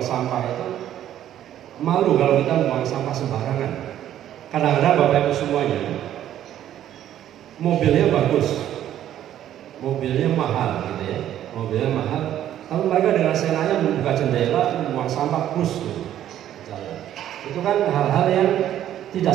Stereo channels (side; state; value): left; quieter; 11.5 dB